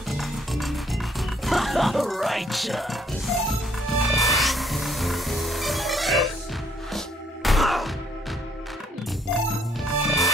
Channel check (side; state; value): both; normal; correlation 0.66